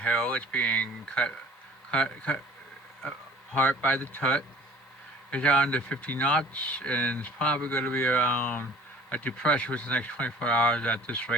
It's being cut apart by the Tut. It's down to 50 knots, and it's probably going to be around a depression within the next 24 hours at this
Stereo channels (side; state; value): both; normal; correlation 0.49